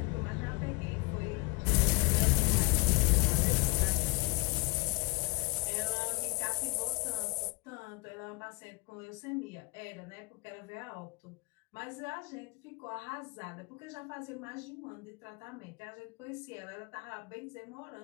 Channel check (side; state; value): right; quieter; 29.0 dB